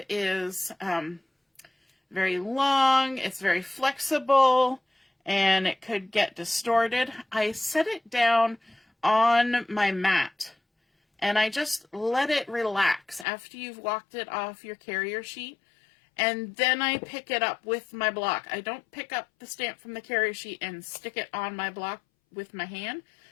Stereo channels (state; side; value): drops out; right; at 13.2 s